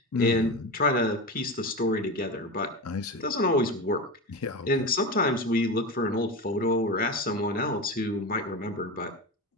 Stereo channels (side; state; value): both; normal; correlation 0.23